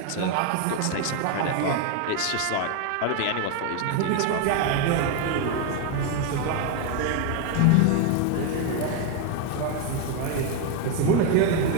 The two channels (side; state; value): both; different; correlation 0.01